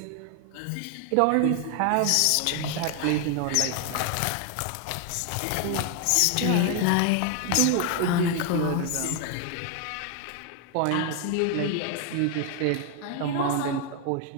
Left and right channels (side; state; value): both; different; correlation 0.01